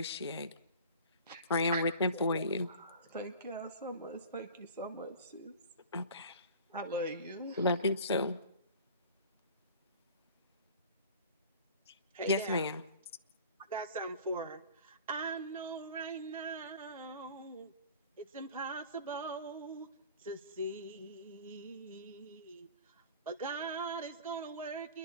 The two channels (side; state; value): both; inverted; correlation -0.42